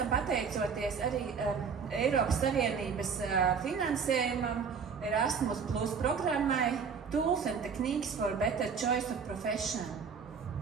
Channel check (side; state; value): left; quieter; 6.1 dB